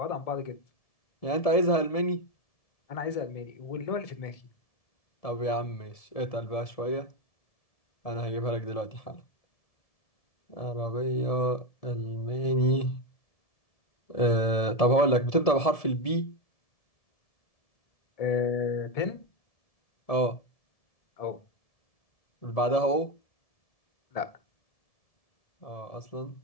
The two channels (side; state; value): right; late; 1.7 ms